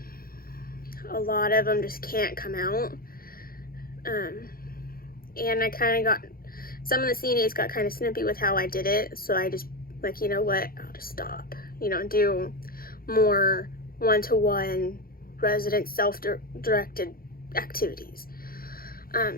a lot of them just can't come out. And I kind of got, some of the CNAs got kind of snippy with how I did it, so I just, like, you know what, I'll just stop, do more one-to-one resident self-directed activities.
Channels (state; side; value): late; right; 0.42 ms